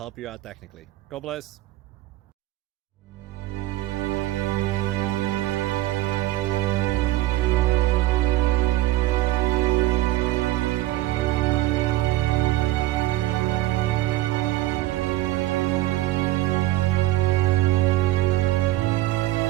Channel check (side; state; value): left; quieter; 16.5 dB